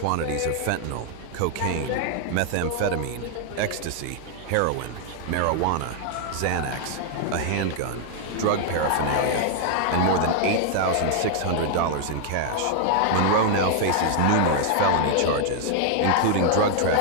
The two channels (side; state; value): both; different; correlation 0.00